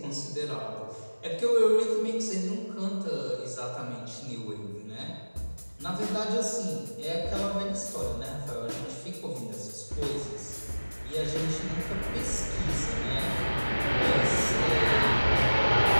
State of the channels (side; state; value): both; inverted; correlation -1.00